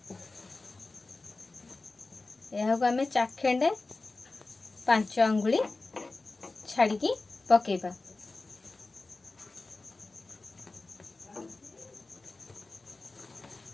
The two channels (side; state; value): right; quieter; 3.4 dB